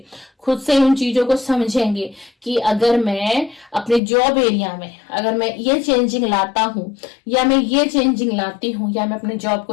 खुद से ही उन चीजों को समझेंगे कि अगर मैं अपने जॉब एरिया में अगर मैं ये चेंजिंग लाता हूं या मैं ये चेंजिंग लाती हूं या मैं अपने जॉब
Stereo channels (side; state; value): right; drops out; at 4.0 s